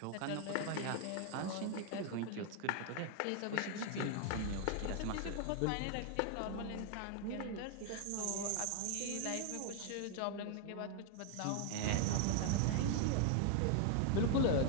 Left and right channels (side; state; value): both; different; correlation 0.00